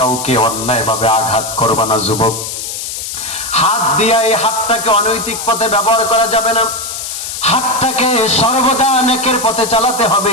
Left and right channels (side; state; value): left; noise; hiss, 6 dB below the sound